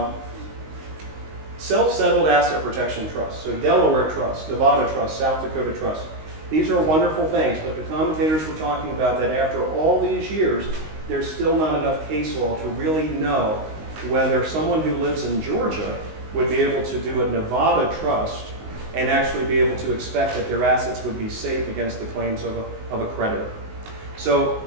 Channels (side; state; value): left; late; 19 ms